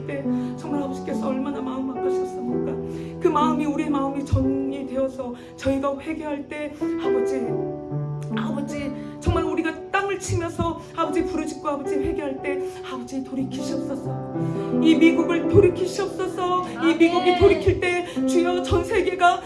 때 정말 아버지께서 얼마나 마음 아프셨습니까? 그 마음이 우리의 마음이 전이 되어서 저희가 회개할 때 아버지 정말 우리가 땅을 치면서 아버지 부르짖고 아버지 회개할 때 아버지 돌이키시옵소서. 이 미국을 돌이키시옵소서. 이 미국이 돌이킬 때 주여 전 세계가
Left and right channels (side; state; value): both; identical; correlation 1.00